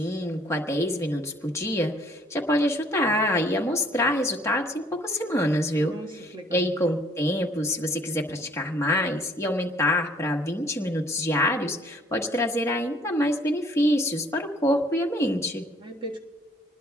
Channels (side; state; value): both; normal; correlation 0.59